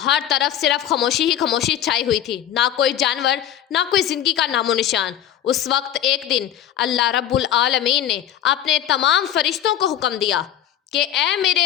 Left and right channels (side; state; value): right; quieter; 11.0 dB